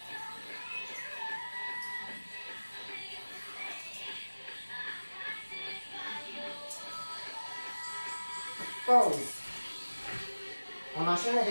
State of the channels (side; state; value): both; inverted; correlation -1.00